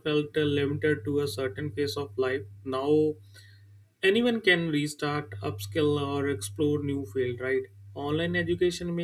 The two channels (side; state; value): both; identical; correlation 1.00